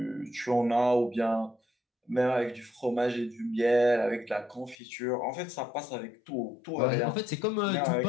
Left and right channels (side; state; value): right; drops out; at 4.8 s